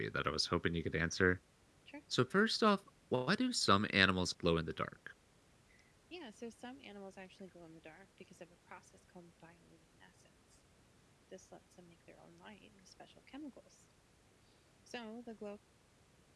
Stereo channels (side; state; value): both; identical; correlation 1.00